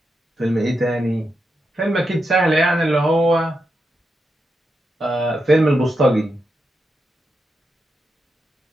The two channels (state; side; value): normal; both; correlation 0.86